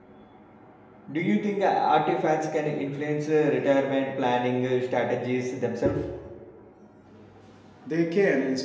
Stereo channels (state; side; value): identical; both; correlation 1.00